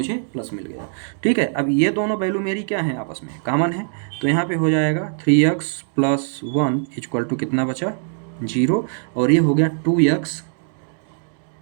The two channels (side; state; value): left; silent; digital silence